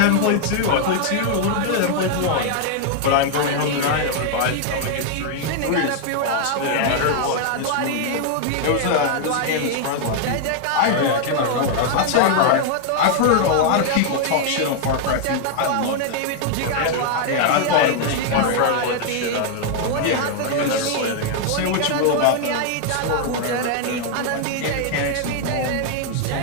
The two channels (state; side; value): different; both; correlation 0.00